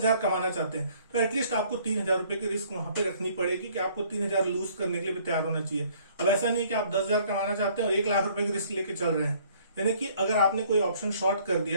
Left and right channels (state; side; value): inverted; both; correlation -0.59